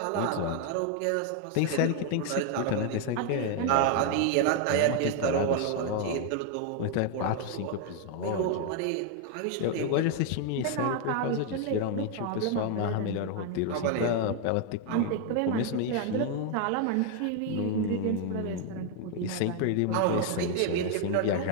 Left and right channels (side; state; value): both; different; correlation 0.00